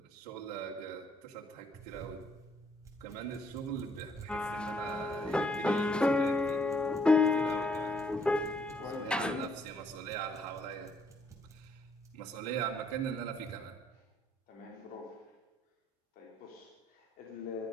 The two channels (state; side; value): normal; both; correlation 0.68